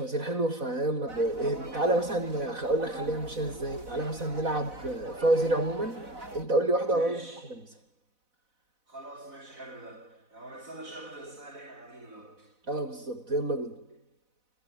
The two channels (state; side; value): late; left; 4.0 ms